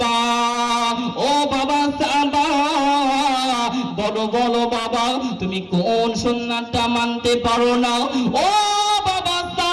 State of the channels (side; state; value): both; identical; correlation 1.00